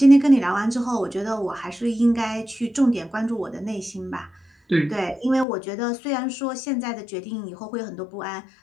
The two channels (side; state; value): right; drops out; at 5.5 s